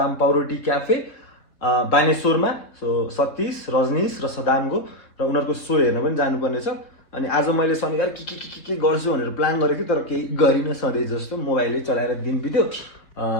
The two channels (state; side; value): late; right; 3.8 ms